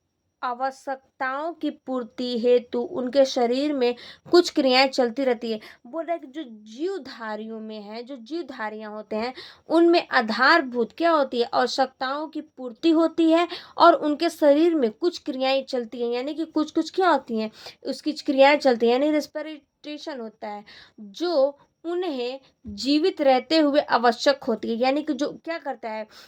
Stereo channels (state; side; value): identical; both; correlation 1.00